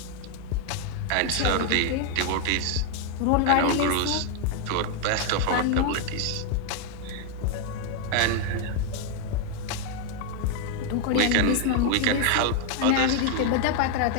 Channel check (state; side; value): different; both; correlation 0.00